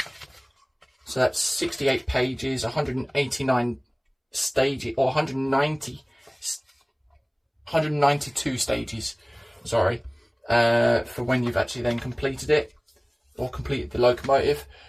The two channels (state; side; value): identical; both; correlation 1.00